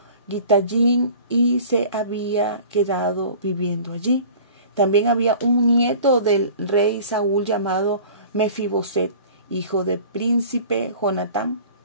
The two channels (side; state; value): both; inverted; correlation -0.44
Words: Gitayín y se había quedado viviendo allí. También había un nieto del rey Saúl llamado Mefiboset, hijo del príncipe Jonatán,